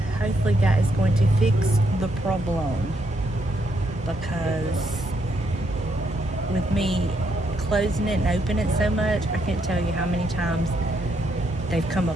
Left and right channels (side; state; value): both; normal; correlation 0.76